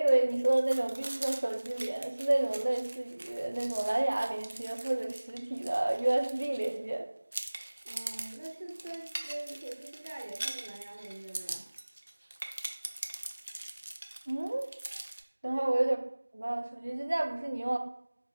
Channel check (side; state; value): both; inverted; correlation -1.00